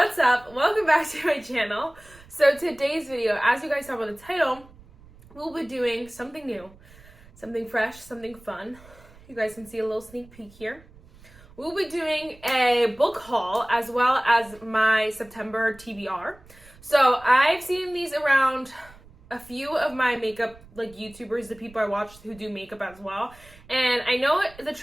up? Welcome back to my channel. So today's video, as you guys saw by the title, we'll be doing something new, something fresh, something fun. You guys can see a little sneak peek here. We'll be doing a book haul as well as my September TBR. So I've seen these around a few of my makeup YouTubers, the people I watch who do makeup as well. And I know the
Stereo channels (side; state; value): right; noise; rumble, 24 dB below the sound